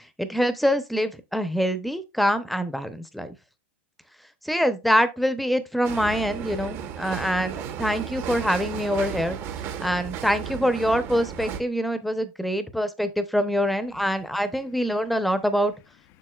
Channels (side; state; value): both; normal; correlation 0.85